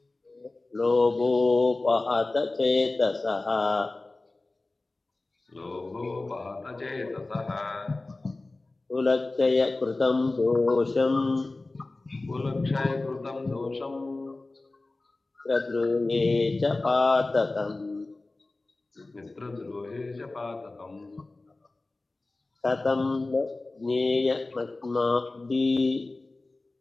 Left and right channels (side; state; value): right; quieter; 3.1 dB